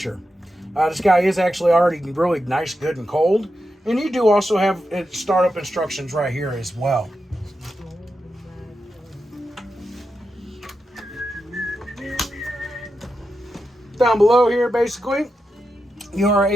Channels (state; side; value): normal; both; correlation 0.88